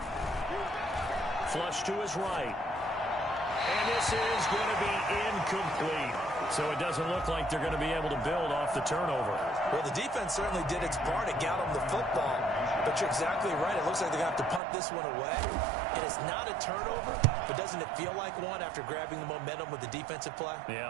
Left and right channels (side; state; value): left; drops out; at 14.6 s